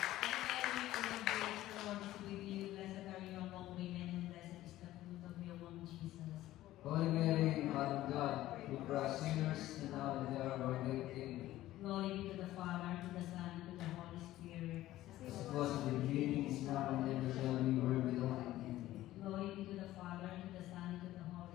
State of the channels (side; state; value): right; quieter; 15.1 dB